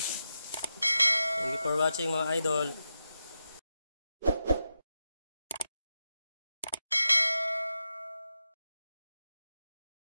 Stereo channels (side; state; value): both; inverted; correlation -0.89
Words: Thank you for watching mga idol.